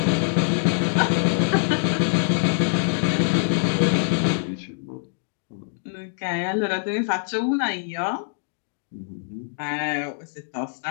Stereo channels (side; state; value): right; silent; digital silence